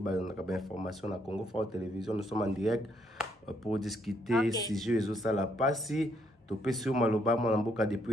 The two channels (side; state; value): both; normal; correlation 0.72